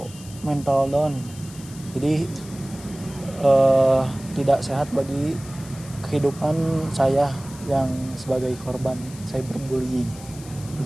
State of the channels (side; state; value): left; noise; hiss, 18 dB below the sound